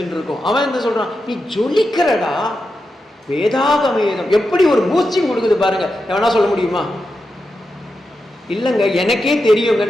இருக்கோம். அவன் என்ன சொல்றான், நீ ஜொலிக்கிறடா. வேதாகவேதம் எப்படி ஒரு பூஸ்டிங் கொடுக்குது பாருங்க. எவனா சொல்ல முடியுமா? இல்லைங்க எனக்கே தெரியுங்க,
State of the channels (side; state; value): both; normal; correlation 0.89